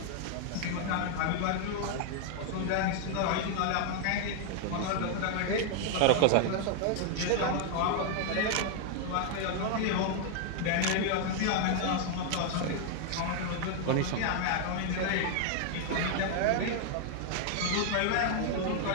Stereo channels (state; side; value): different; both; correlation 0.00